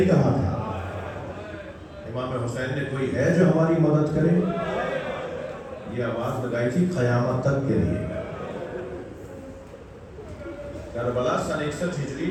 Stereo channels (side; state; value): both; identical; correlation 1.00